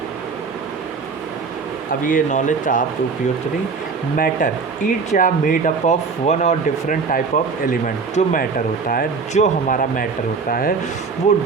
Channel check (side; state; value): left; quieter; 4.9 dB